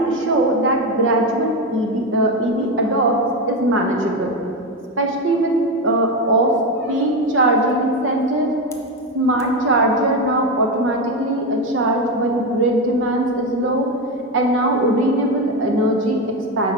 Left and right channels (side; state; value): both; normal; correlation 0.14